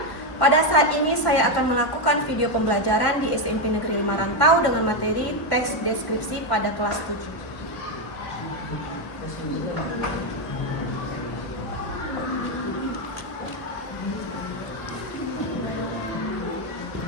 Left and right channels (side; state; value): right; late; 1.1 ms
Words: Pada saat ini saya akan melakukan video pembelajaran di SMP Negeri 5 Rantau dengan materi teks deskripsi pada kelas 7.